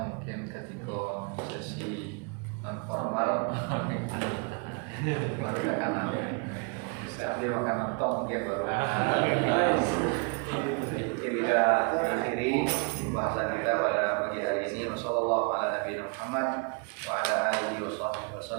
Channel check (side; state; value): left; quieter; 34.2 dB